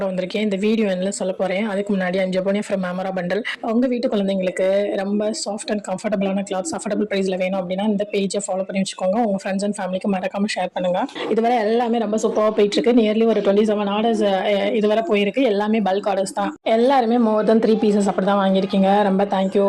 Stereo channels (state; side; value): identical; both; correlation 1.00